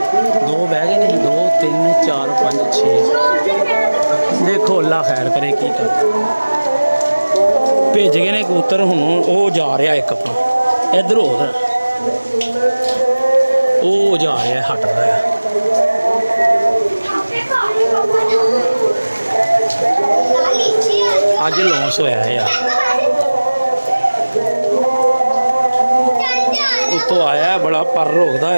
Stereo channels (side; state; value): both; inverted; correlation -1.00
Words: 2 ਬਹਿ ਗਏ ਨੇ 2 3 4 5 6 देखो अल्लाह खैर करे की कर ਭੇਜ ਗਏ ਨੇ ਕਬੂਤਰ, ਹੁਣ ਉਹ ਜਾ ਰਿਹਾ ਇੱਕ ਆਪਣਾ ਇੱਧਰ ਉਧਰ, ਉਹ ਜਾ ਰਿਹਾ ਹਟ ਰਿਹਾ। ਅੱਜ ਲੌਂਸ ਹੋਇਆ ਯਾਰ, ਉੱਤੋਂ ਆਇਆ ਬੜਾ ਪਰ ਰੋਕਦਾ